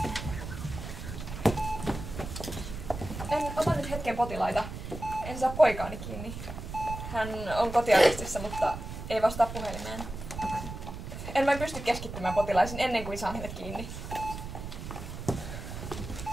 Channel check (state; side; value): noise; right; rumble, 8 dB below the sound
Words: En ota nyt hetken potilaita. En saa poikaani kiinni. Hän on kotiarestissa, mutta ei vastaa puhelimeen. En vain pysty keskittymään potilaisiin ennen kuin saan hänet kiinni.